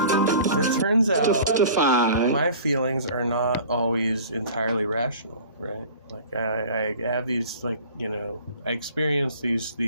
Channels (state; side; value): inverted; both; correlation -0.44